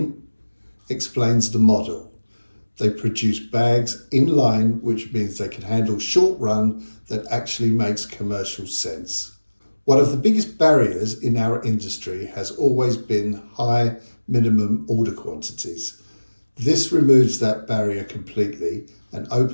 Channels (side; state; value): both; inverted; correlation -1.00